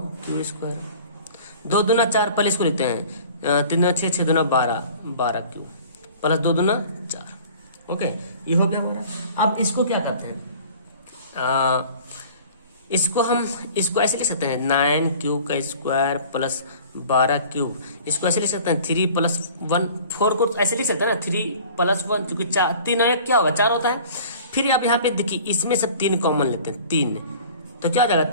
q स्क्वायर, 2 दूना 4, पहले इसको लिखते हैं, 3 दूना 6, 6 दूना 12, 12q प्लस 2 दूना 4। ओके, ये हो गया हमारा। अब इसको क्या करते हैं, इसको ऐसे लिख सकते हैं 9q का स्क्वायर प्लस 12q, इसको ऐसे लिख सकते हैं 3 प्लस 1, 4 को ऐसे लिख सकते हैं ना, 3 प्लस 1, क्योंकि 3 और 1 क्या होगा 4 होता है। फिर अब यहाँ पे देखिए इसमें सब 3 कॉमन लेते हैं, 3, तो क्या हो जाएगा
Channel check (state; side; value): inverted; both; correlation -0.46